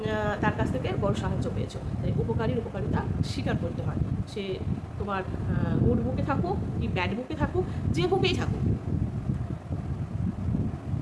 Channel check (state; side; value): identical; both; correlation 1.00